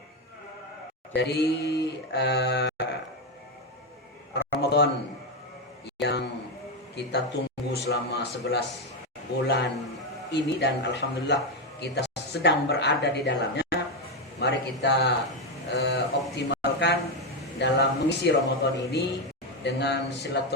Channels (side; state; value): both; normal; correlation 0.08